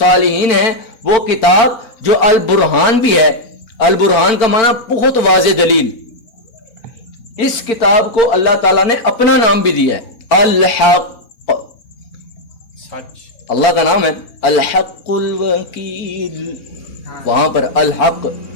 ہیں. وہ کتاب جو البرہان بھی ہے, البرہان کا معنی بہت واضح دلیل. اس کتاب کو اللہ تعالیٰ نے اپنا نام بھی دیا ہے, الحق, اللہ کا نام ہے الحق الوکیل. وہاں پر الحق,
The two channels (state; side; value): late; right; 4.4 ms